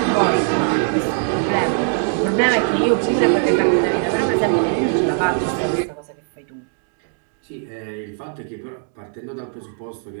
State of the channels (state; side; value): silent; left; 62 dB below the other